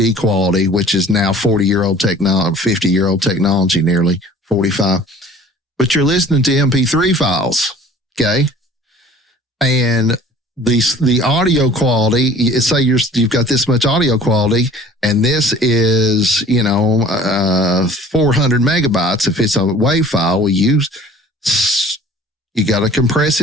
quality, which is now 50-year-old technology, nearly 45. But you're listening to MP3 files, okay? And the audio quality, say you've got this much audio quality, and this is 400 megabytes. If it's a WAV file, you got to compress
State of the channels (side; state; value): both; normal; correlation 0.48